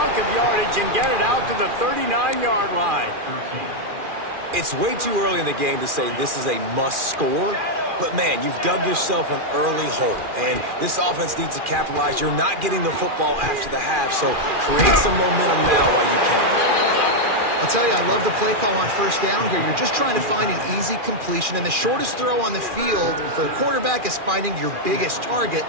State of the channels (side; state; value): left; late; 2.4 ms